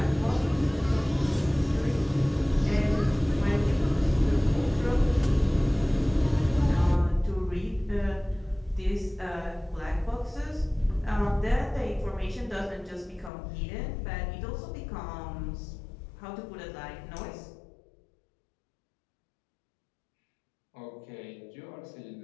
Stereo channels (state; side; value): drops out; right; at 13.3 s